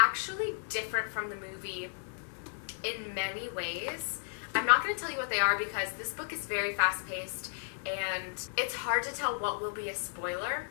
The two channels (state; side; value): silent; right; digital silence